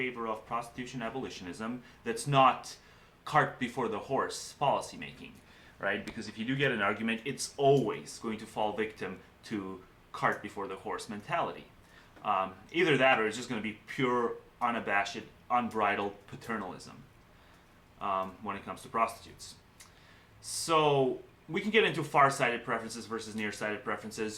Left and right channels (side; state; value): both; identical; correlation 1.00